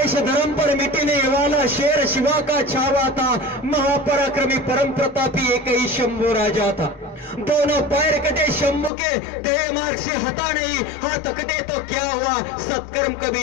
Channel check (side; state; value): right; drops out; at 8.9 s